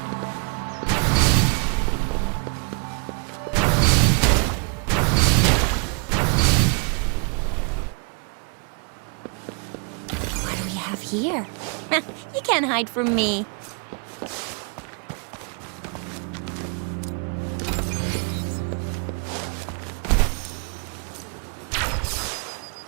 here. You can't hide from me.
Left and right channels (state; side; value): quieter; left; 39.3 dB